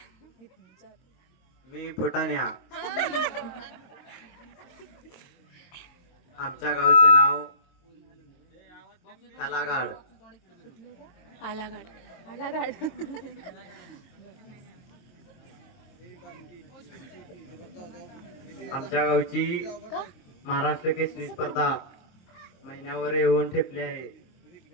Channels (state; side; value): late; right; 22 ms